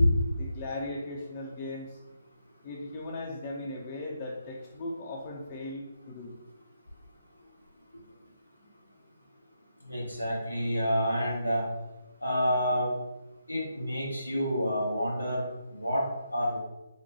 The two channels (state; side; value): inverted; both; correlation -0.81